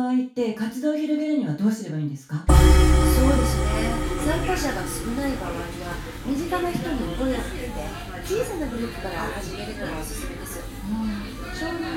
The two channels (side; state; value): both; identical; correlation 1.00